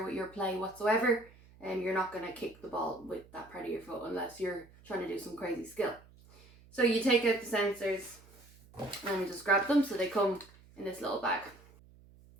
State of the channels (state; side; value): noise; right; hum, 24 dB below the sound